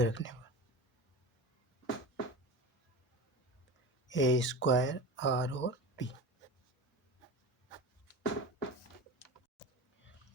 पर ए स्क्वायर आर और पी।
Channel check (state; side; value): normal; both; correlation 0.29